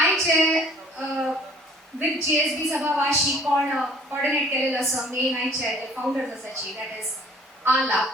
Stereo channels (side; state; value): both; normal; correlation 0.53